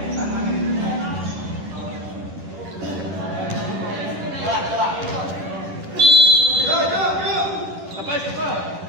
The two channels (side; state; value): left; late; 10 ms